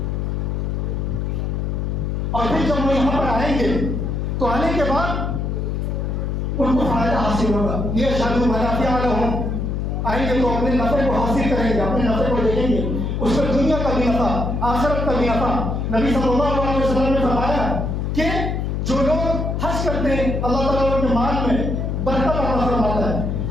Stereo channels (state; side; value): noise; left; hum, 1 dB below the sound